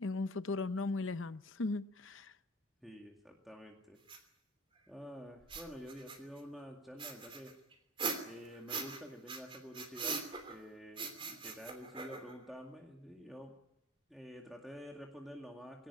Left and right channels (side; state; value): both; normal; correlation 0.41